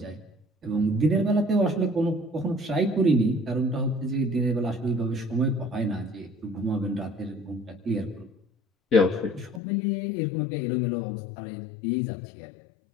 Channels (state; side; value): drops out; right; at 9.6 s